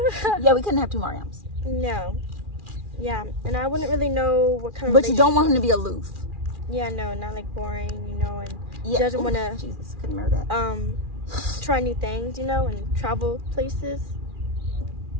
Yeah, we couldn't have two Mariams. No. Yeah, and I wouldn't really know what kind of. But you don't want him to be aloof. Yeah, no, not like boring, and yeah. Doesn't want to. Jesus, couldn't remember that. Try new things, and travel places.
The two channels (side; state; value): left; late; 2.4 ms